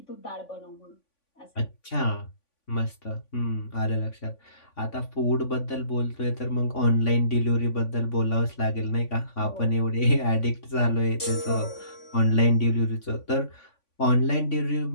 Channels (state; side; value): late; right; 3.5 ms